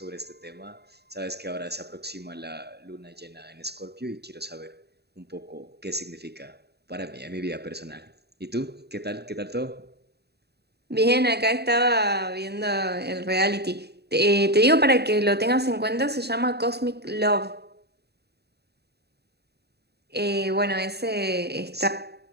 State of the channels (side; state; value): left; late; 0.48 ms